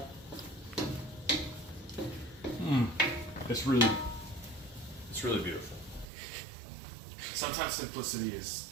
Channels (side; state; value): left; drops out; at 6.1 s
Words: It's really beautiful. Sometimes simplicity is